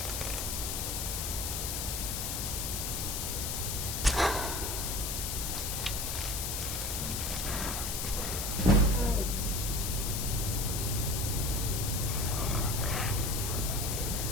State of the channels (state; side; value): noise; left; hiss, 2 dB below the sound